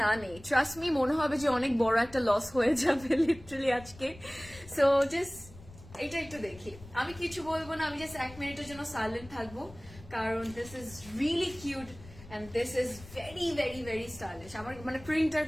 না নেই, ট্রাস্ট মি, মনে হবে যে অনেক বড় একটা লস হয়ে যাবে লিটারালি আজকে। সো জাস্ট এটা একটু দেখি, আমি কিছু বলবো না, আমি জাস্ট 1 মিনিটের জন্য সাইলেন্ট থাকবো, কারণ this is really cute and this is very stylish. আমার মানে প্রিন্টার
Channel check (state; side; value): noise; left; rumble, 18 dB below the sound